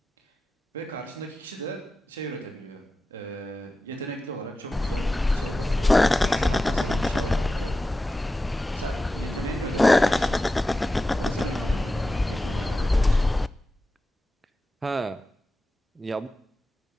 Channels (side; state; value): both; normal; correlation 0.93